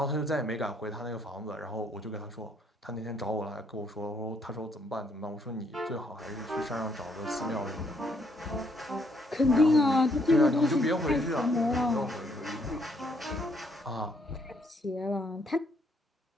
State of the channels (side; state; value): both; normal; correlation 0.70